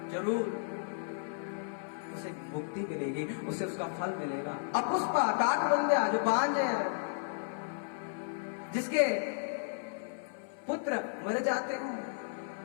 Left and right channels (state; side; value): silent; right; 55 dB below the other